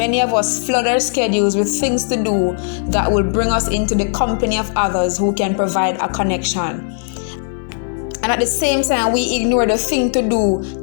of us flood our schedules with things to do that will bring us into the company of others who can provide a connection. And at the same time, we ignore the thing to do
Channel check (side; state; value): right; silent; 68 dB below the other